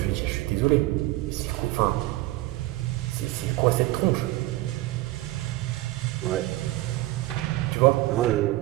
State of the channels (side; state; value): left; quieter; 18.2 dB